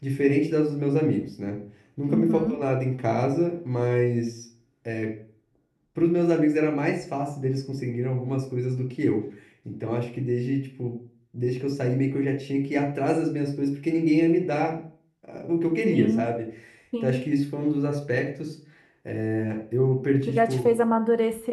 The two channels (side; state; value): both; identical; correlation 1.00